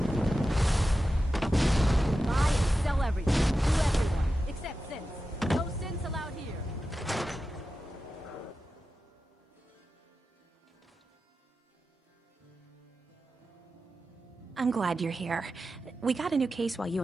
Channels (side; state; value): both; normal; correlation 0.92